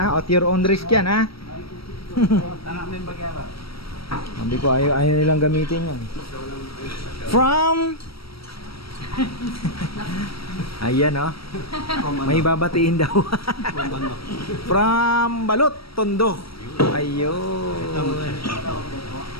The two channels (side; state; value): right; late; 0.75 ms